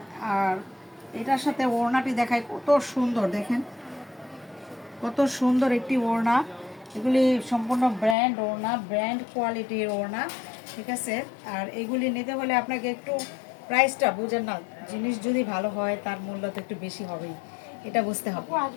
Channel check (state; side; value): drops out; right; at 8.2 s